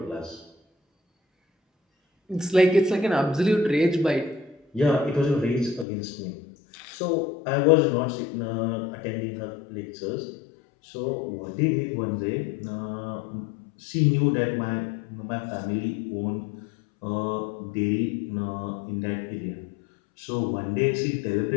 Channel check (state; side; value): drops out; right; at 5.9 s